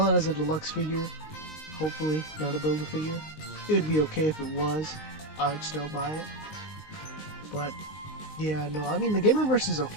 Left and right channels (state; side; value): late; right; 19 ms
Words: it as a deluxe figure, hopefully, not a build-a-figure. It would be okay if it was. I'd still buy it. But, yeah, no, I mean, the Gamerverse is